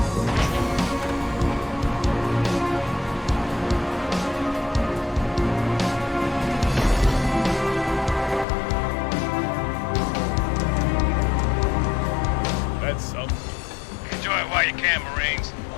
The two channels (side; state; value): right; drops out; at 8.5 s